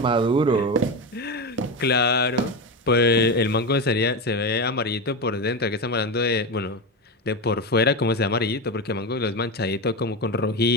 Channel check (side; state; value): both; normal; correlation 0.17